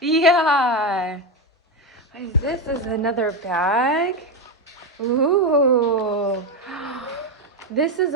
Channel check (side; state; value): both; normal; correlation 0.12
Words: Yeah. What is this? Is another bag? Ooh. This is